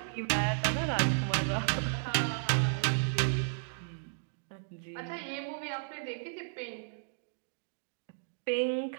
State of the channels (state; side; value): silent; left; digital silence